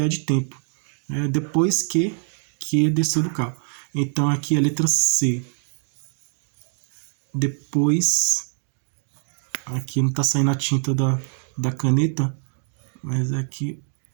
de tempo. Depois que desceu do carro. Então aqui a letra C. Depois, aqui não está saindo a tinta da caneta, mas aqui,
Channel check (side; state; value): left; silent; 63 dB below the other